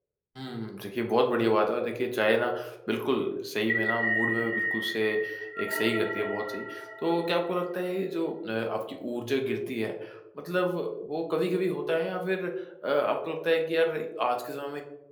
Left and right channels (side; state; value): both; identical; correlation 1.00